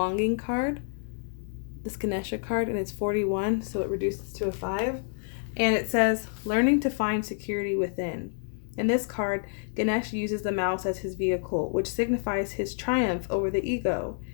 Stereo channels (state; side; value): silent; right; 59 dB below the other